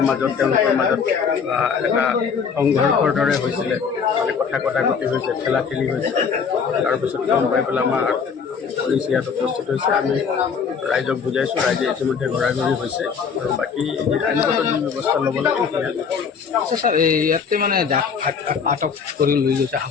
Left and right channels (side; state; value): right; quieter; 6.2 dB